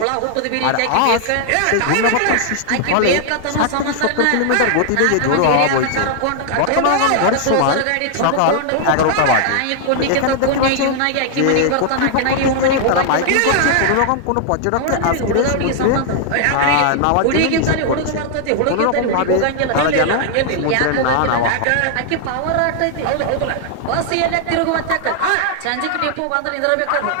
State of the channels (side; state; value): both; different; correlation 0.00